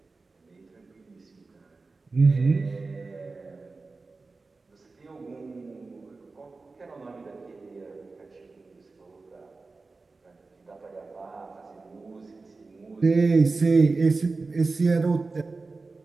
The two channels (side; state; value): left; quieter; 3.8 dB